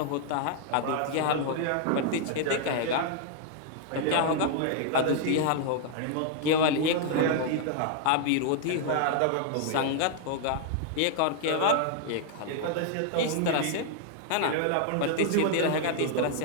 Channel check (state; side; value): different; both; correlation -0.01